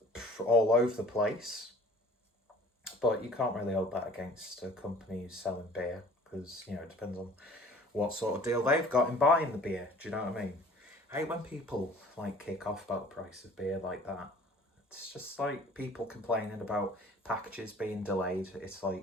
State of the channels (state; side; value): normal; both; correlation 0.49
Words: all over the place, but you can't really hold that against a company who's selling beer, because it depends on what sort of deal they've got in buying the beer. Do you know what I mean? I hate when people kick off about the price of beer like that. It's just like people complaining about packages being delayed. It's